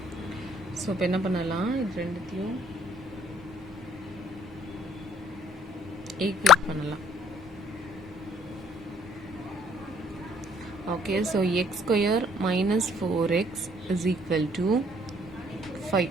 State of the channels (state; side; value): normal; both; correlation 0.61